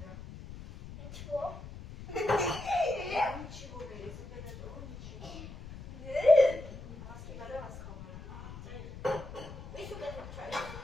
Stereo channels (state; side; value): noise; left; rumble, 12 dB below the sound